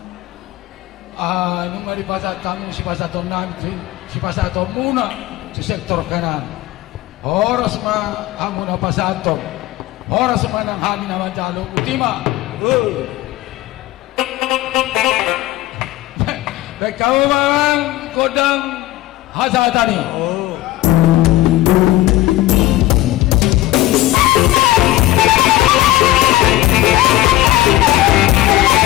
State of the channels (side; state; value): right; quieter; 16.4 dB